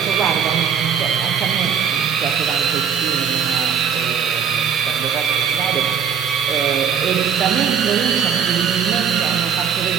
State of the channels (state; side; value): quieter; left; 7.4 dB